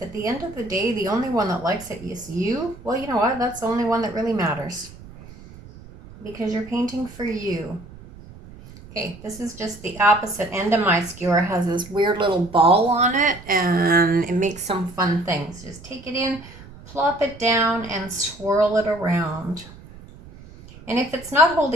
at the end of the day the only one that likes it is you, well, you know what? That's the only one that really matters. Because you're painting for you. Okay, this is just the opposite end of my skewer. It has this weird little ball on it, and it makes some fun things. Just take it in, plop it down, and swirl it around. And if it's not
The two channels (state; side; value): noise; right; rumble, 18 dB below the sound